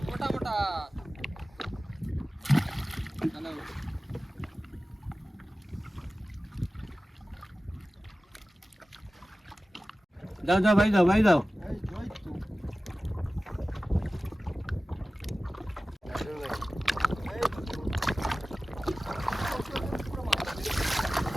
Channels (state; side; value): normal; both; correlation 0.96